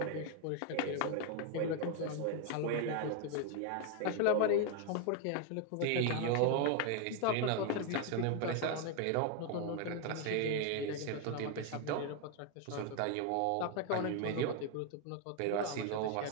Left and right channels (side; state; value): both; different; correlation 0.01